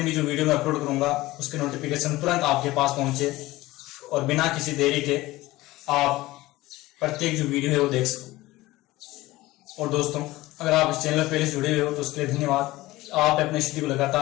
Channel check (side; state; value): right; quieter; 18.4 dB